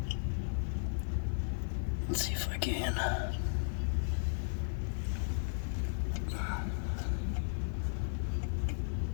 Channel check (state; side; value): silent; right; 54 dB below the other